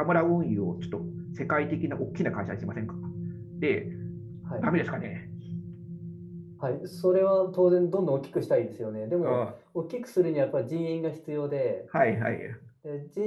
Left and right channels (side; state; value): both; identical; correlation 1.00